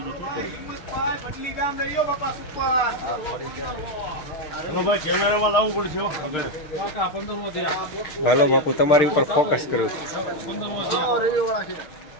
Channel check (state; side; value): late; right; 6.6 ms